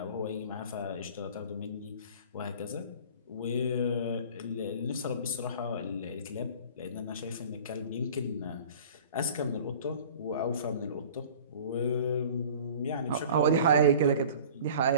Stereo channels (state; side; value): inverted; both; correlation -0.44